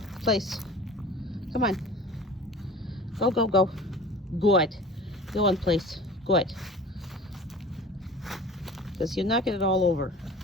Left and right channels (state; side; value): normal; both; correlation 0.40